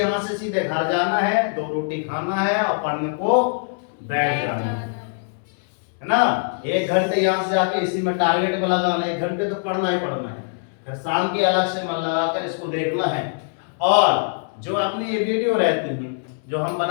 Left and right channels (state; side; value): silent; right; 64 dB below the other